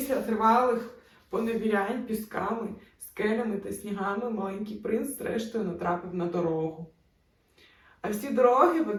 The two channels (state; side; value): identical; both; correlation 1.00